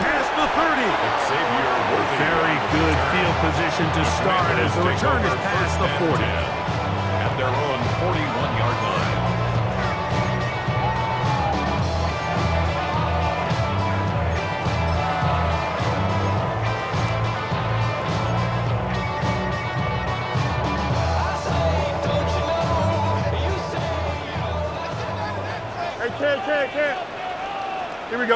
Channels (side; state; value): both; identical; correlation 1.00